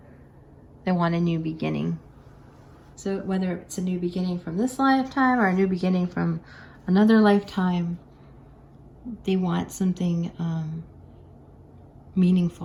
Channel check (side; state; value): both; identical; correlation 1.00